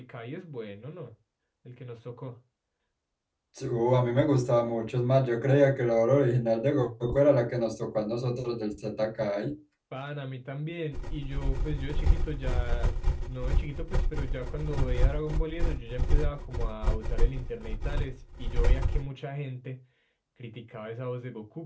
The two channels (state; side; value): identical; both; correlation 1.00